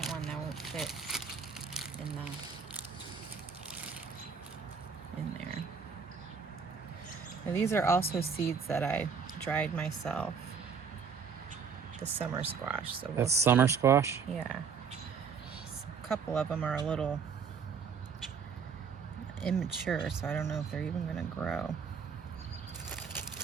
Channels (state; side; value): quieter; left; 6.1 dB